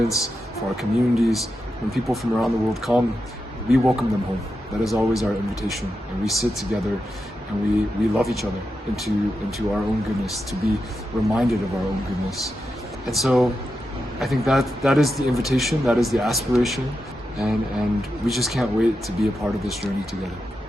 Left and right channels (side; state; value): both; normal; correlation 0.88